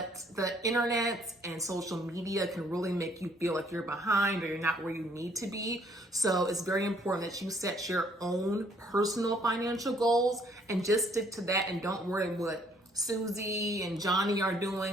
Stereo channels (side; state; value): both; normal; correlation 0.64